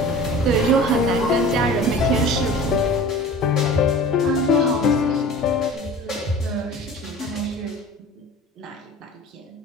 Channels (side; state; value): both; normal; correlation 0.40